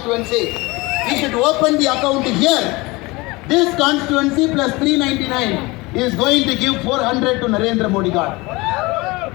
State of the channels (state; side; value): quieter; right; 23.2 dB